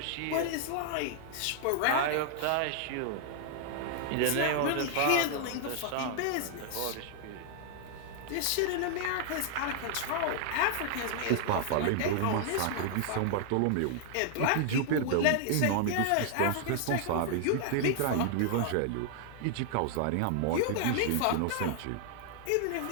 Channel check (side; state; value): both; different; correlation 0.00